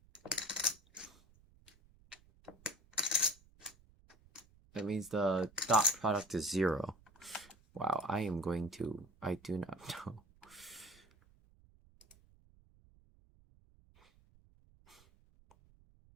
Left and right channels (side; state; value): right; noise; rumble, 28 dB below the sound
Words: means the dot product is 0. Wow, I do not know.